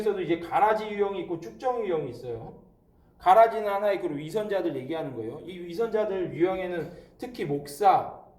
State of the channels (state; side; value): identical; both; correlation 1.00